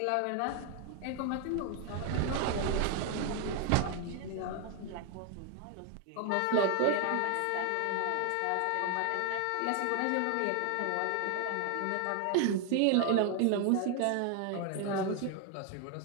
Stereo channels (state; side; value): different; both; correlation 0.01